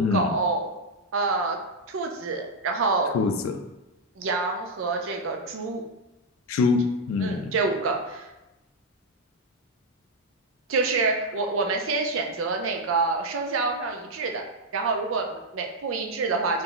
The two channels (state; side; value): normal; both; correlation 0.01